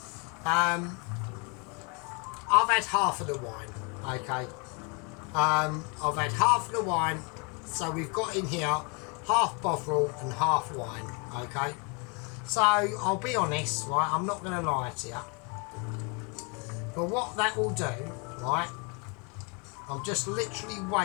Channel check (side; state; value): right; quieter; 32.9 dB